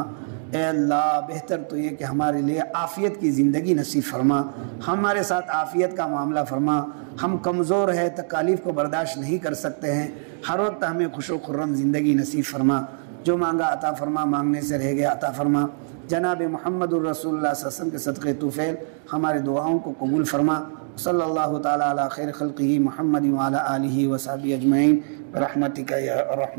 اے اللہ بہتر تو یہ کہ ہمارے لیے عافیت کی زندگی نصیب فرما، ہمارے ساتھ عافیت کا معاملہ فرما۔ ہم کمزور ہیں، تکالیف کو برداشت نہیں کر سکتے ہیں، ہر وقت ہمیں خوش و خرم زندگی نصیب فرما۔ جو مانگا عطا فرما، مانگنے سے رہ گیا عطا فرما۔ جناب محمد الرسول اللہ صلی اللہ علیہ وسلم کے صدقے طفیل ہمارے دعاؤں کو قبول فرما۔ صلی اللہ تعالیٰ علی خیر خلقہ محمد وعلی آلہ وصحبہ اجمعین برحمتک یا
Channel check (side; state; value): left; silent; digital silence